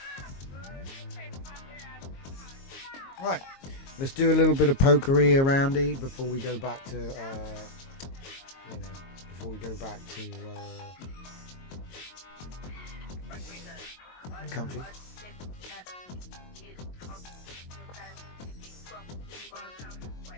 Right, let's do a little bit of pokery aroundy before we go back to, comfy.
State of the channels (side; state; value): right; late; 22 ms